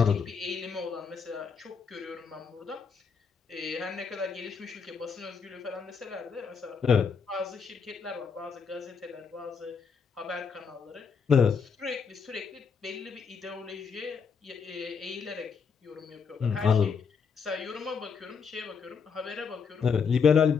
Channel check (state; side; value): quieter; right; 5.9 dB